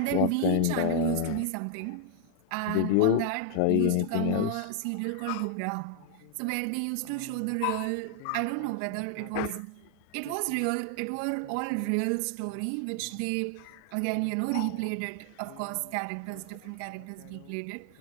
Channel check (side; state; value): both; different; correlation 0.00